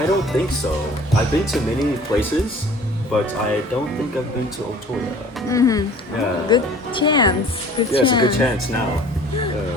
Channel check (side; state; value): both; normal; correlation 0.48